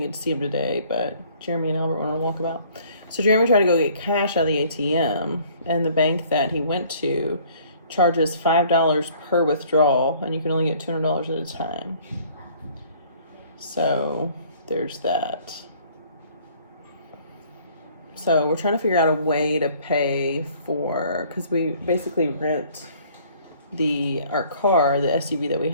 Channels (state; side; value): inverted; both; correlation -0.56